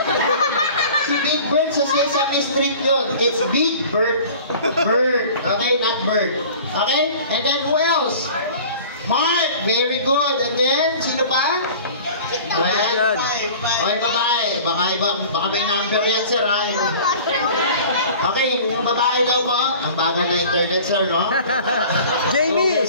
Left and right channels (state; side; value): inverted; both; correlation -0.44